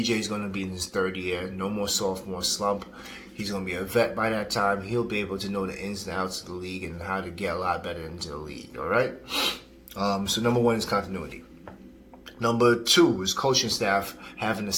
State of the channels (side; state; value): both; identical; correlation 1.00